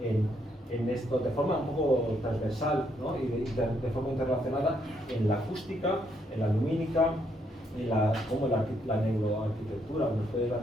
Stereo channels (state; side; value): normal; both; correlation 0.74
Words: en esto de forma un poco transversal, ¿no? Y de forma interrelacionada en la acústica, en la lumínica, en cómo la neuroarquitectura nos puede